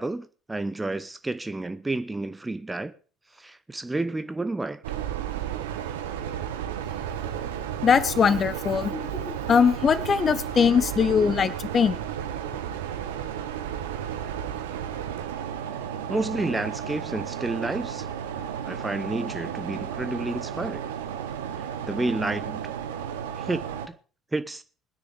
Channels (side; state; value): both; normal; correlation 0.63